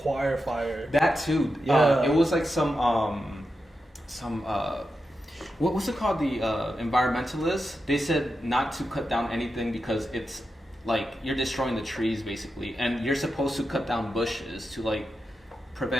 fire. That too. Yeah. It was like some what's it called? The environmentalists. They said not to cut down anything because it's like you're destroying the trees basically, and you're supposed to cut down bushes to like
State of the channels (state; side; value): normal; both; correlation 0.89